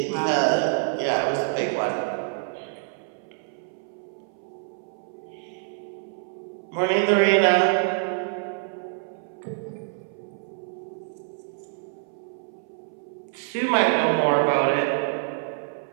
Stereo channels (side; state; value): left; silent; 61 dB below the other